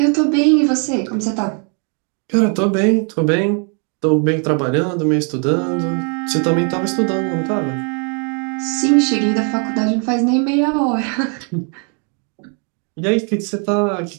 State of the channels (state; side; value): quieter; left; 39.8 dB